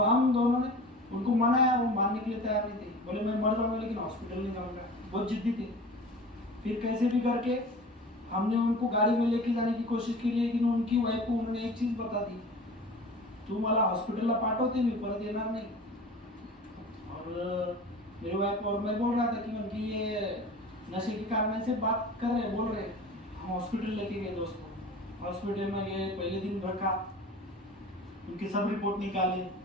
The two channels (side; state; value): both; normal; correlation 0.39